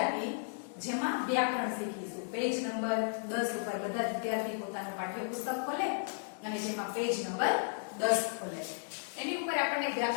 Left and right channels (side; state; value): right; silent; digital silence